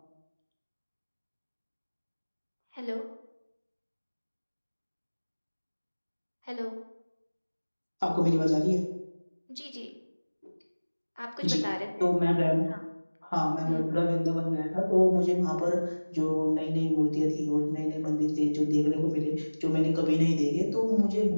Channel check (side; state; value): both; inverted; correlation -1.00